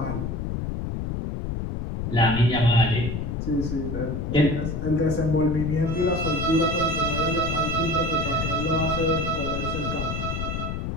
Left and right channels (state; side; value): noise; left; rumble, 3 dB below the sound